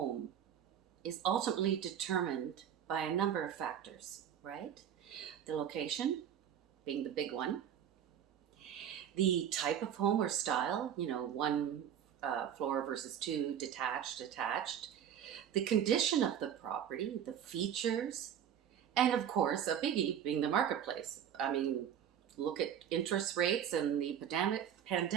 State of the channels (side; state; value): left; quieter; 9.3 dB